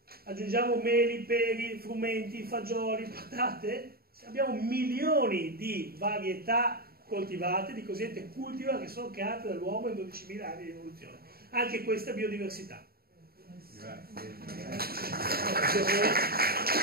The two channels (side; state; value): left; late; 0.45 ms